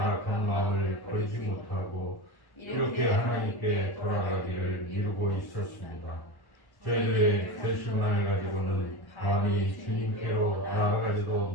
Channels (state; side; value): late; right; 1.1 ms